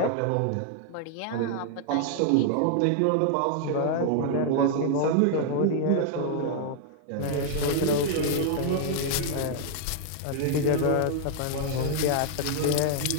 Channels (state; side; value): different; both; correlation 0.00